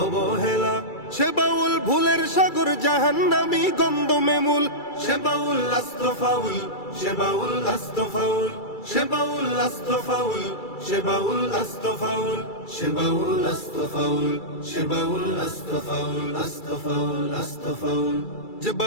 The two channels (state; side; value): late; right; 2.3 ms